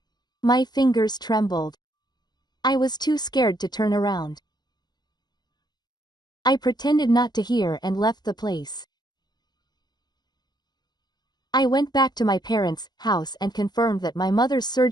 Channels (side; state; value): right; late; 0.20 ms